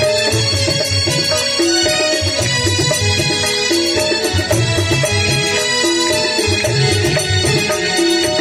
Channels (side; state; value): both; identical; correlation 1.00